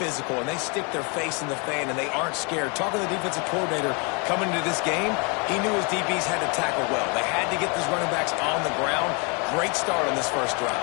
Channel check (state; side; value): quieter; right; 33.0 dB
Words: and they stick their face in the fan and they aren't scared. Talking to the defensive coordinator coming into this game, he knew his DBs had to tackle well. They had to get these running backs on the ground. Great start on this first drive.